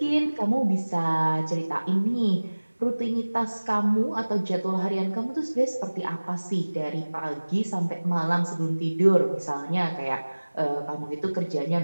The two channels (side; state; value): both; inverted; correlation -1.00